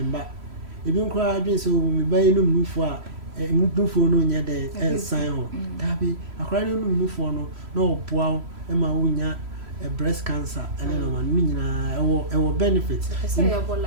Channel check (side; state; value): left; late; 3.0 ms